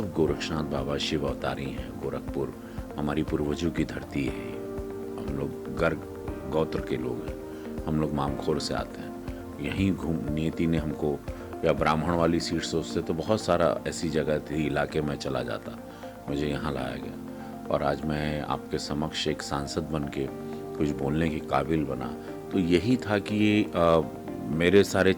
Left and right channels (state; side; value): identical; both; correlation 1.00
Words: गोरक्षनाथ बाबा शिव अवतारी हैं, गोरखपुर हमारी पूर्वजों की धरती है। हम लोग गर्ग गोत्र के लोग हैं, हम लोग मामखोर से आते हैं। यहीं नियति ने हमको, या ब्राह्मण वाली सीट सोचते तो बहुत सारा ऐसी जगह थी, इलाके में चला जाता, मुझे यहाँ लाया गया। और आज मैं आपके समक्ष एक सांसद बन के कुछ बोलने के काबिल बना, तो यही था कि मेरे सारे